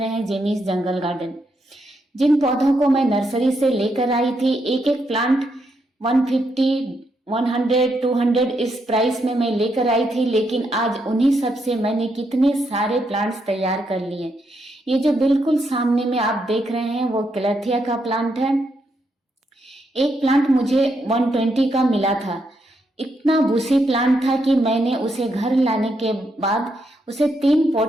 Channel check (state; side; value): normal; both; correlation 0.79